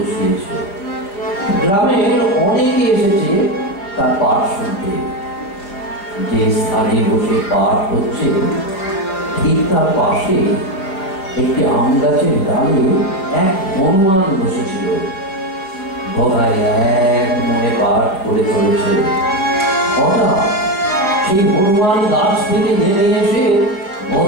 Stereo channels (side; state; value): right; late; 5.0 ms